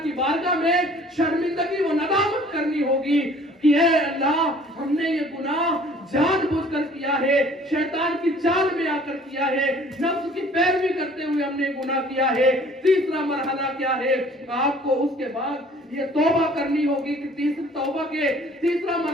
की बारगाह में शर्मिंदगी व नदामत करनी होगी कि ऐ अल्लाह, हमने ये गुनाह जानबूझकर किया है, शैतान की चाल में आकर किया है, नफ्स की पैरवी करते हुए हमने गुनाह किया है। तीसरा मरहला क्या है? आपको उसके बाद ये तौबा करनी होगी कि तीसरी तौबा के तीसरा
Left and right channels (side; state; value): both; normal; correlation 0.53